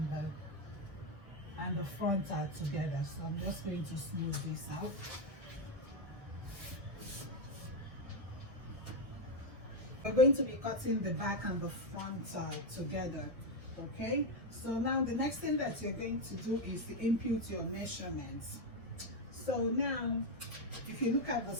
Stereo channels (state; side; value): late; left; 1.6 ms